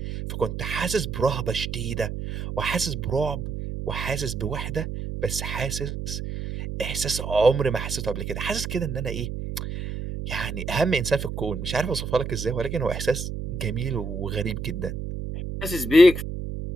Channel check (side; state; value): right; noise; hum, 5 dB below the sound